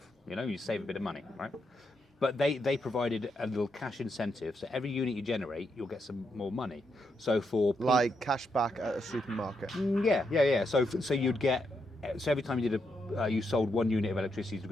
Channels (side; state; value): both; normal; correlation 0.81